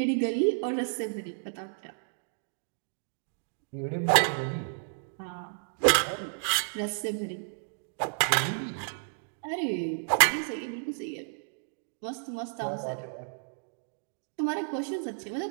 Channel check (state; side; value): silent; left; digital silence